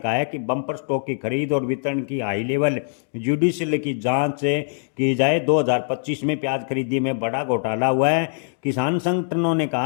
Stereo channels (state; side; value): silent; right; digital silence